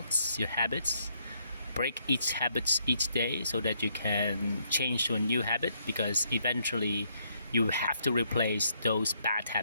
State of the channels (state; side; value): inverted; both; correlation -0.73